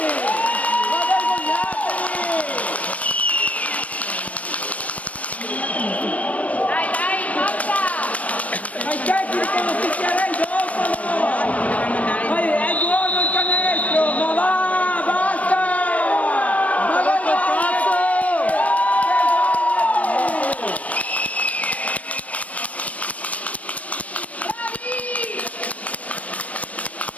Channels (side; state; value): right; late; 0.067 ms